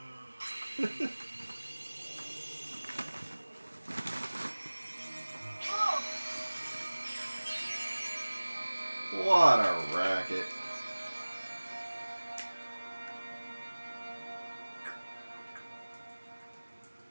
What a racket.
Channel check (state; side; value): inverted; both; correlation -1.00